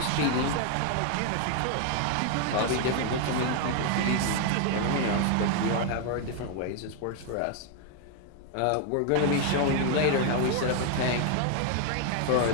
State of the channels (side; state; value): both; different; correlation 0.01